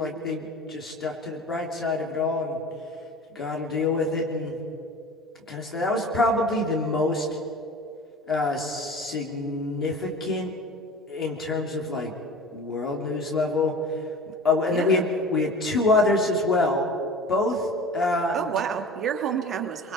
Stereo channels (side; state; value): both; normal; correlation 0.38